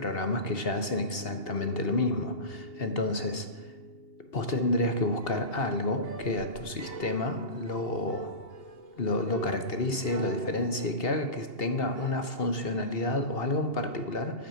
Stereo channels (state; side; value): late; right; 2.8 ms